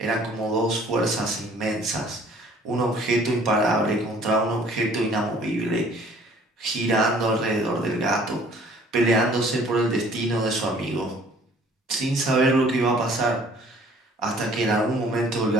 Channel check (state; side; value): normal; both; correlation 0.55